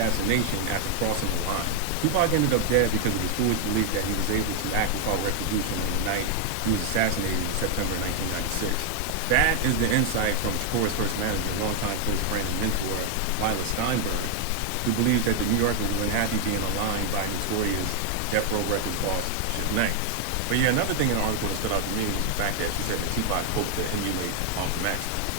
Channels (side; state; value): both; different; correlation 0.00